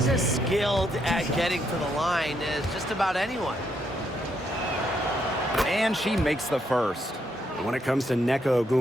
as skilled at getting to the line as just about anyone. And she makes the first. When it comes to Neko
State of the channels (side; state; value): both; normal; correlation 0.76